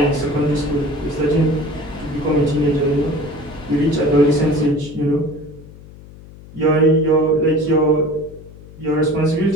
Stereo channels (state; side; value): noise; left; hum, 19 dB below the sound